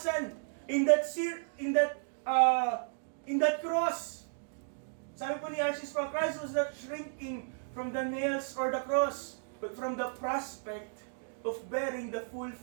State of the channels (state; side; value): silent; left; digital silence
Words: in that cross. Sabi po ni R.C. Sproul, Christ was not shrinking from the nails or the cross, but from the prospect of bearing the full